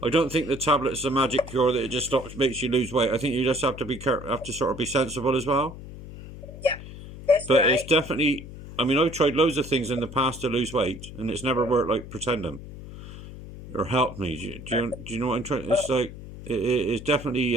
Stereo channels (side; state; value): left; noise; hum, 13 dB below the sound